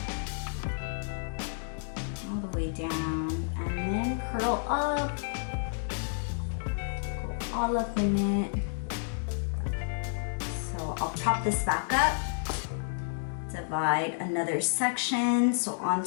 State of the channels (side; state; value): right; silent; digital silence